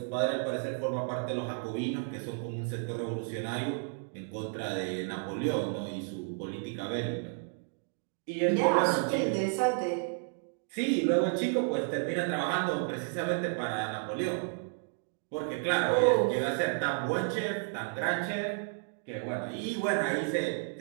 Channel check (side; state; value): left; silent; 56 dB below the other